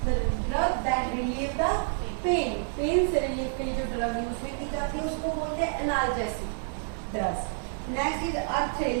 the drug that relieve the pain. Pain से रिलीफ के लिए जो ड्रग यूज में की जाती है उसको बोलते हैं analgesic. Dust. Next is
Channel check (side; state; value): left; silent; digital silence